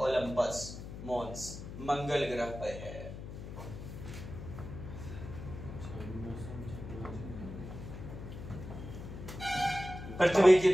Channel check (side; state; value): left; noise; hum, 10 dB below the sound